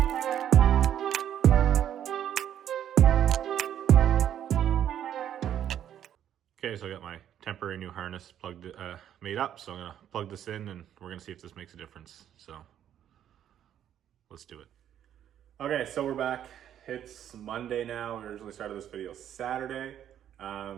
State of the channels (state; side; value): quieter; left; 10.3 dB